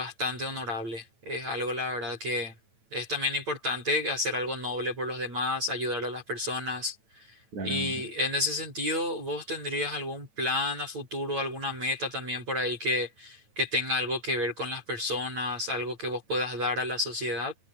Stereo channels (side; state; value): left; late; 9.1 ms